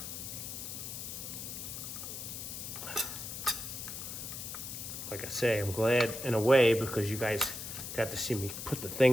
Like I say, I'm glad in a way because you guys got to see me put the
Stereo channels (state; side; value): noise; left; hiss, 7 dB below the sound